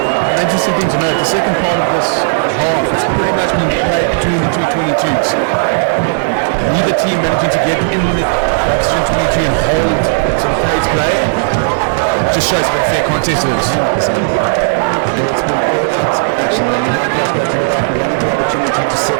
interesting thing to note, the second part of this half is pretty much been played between the two 22s. Neither team managing to get in the position 22 and hold it to the place play. It just shows what fair contest is. 100%. It's been all out action, and Michaelhouse go to the back, wanted the opportunity to set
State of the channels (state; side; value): silent; left; digital silence